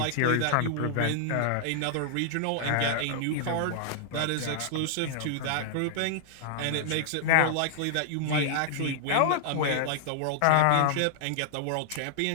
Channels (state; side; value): different; both; correlation -0.01